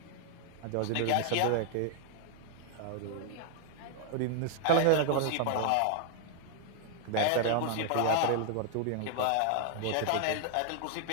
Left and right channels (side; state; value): both; different; correlation 0.00